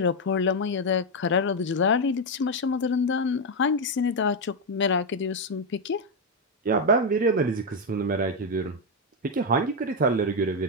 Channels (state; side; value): normal; both; correlation 0.04